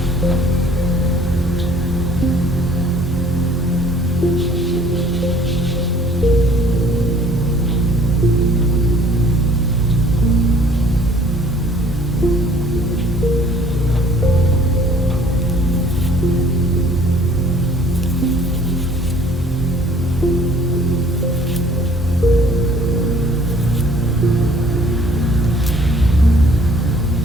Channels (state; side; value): normal; both; correlation 0.55